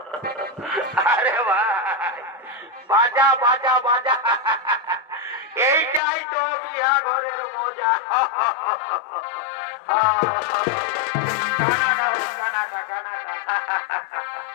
আরে ভাই বাজা বাজা বাজা, এইটাই তো বিয়া ঘরের মজা। Canada Canada Canada.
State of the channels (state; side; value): drops out; right; at 6.0 s